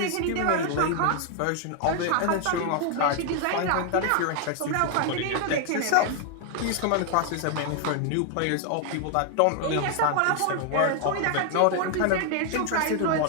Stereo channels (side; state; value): both; different; correlation 0.00